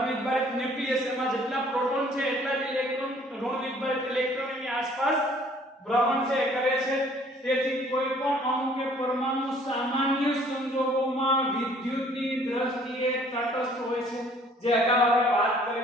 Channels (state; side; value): normal; both; correlation 0.57